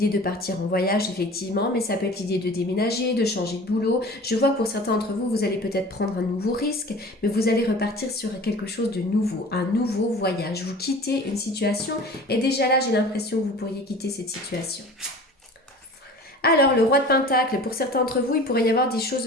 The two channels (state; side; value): normal; both; correlation 0.41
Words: de partir en voyage effectivement, mais ça peut être l'idée de déménager, de changer de boulot. Je vois que pour certains d'entre vous, vous allez peut-être prendre un nouveau risque, mais vous allez repartir sur quelque chose de nouveau, un nouveau voyage. Vous quittez une situation et déjà là, j'ai l'impression que vous pourriez quitter cette situation. Alors, le roi de Pentacle, pour certains d'entre vous, il pourrait y avoir des choses